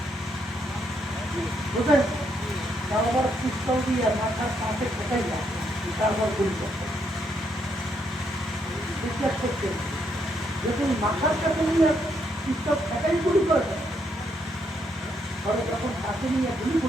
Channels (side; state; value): both; normal; correlation 0.75